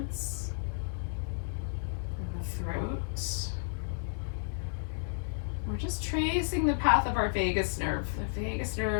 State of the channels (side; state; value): right; silent; digital silence